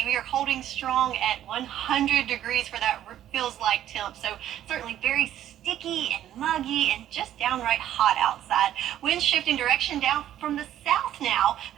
we are holding strong at 100 degrees for that feels like temp, so certainly very sticky and muggy and just downright hot outside. Winds shifting direction down from the south now,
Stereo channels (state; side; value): quieter; left; 11.7 dB